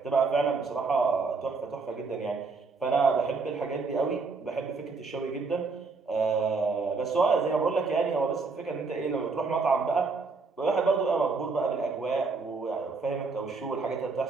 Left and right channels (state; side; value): quieter; left; 4.3 dB